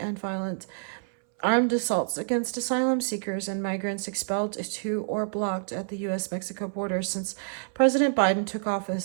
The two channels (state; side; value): silent; left; 60 dB below the other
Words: violent armed assaults against asylum seekers and migrants expelled to or blocked at the U.S.-Mexico border since President Biden took